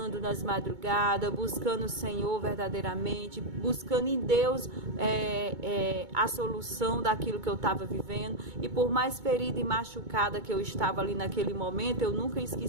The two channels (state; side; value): late; left; 2.2 ms